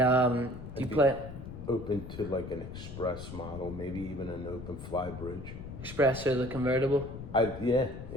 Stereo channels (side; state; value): left; noise; rumble, 11 dB below the sound